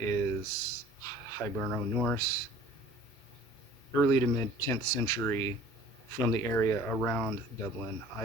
Hiberno-Norse, early to mid 10th century, from the area around Dublin,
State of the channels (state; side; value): normal; both; correlation 0.49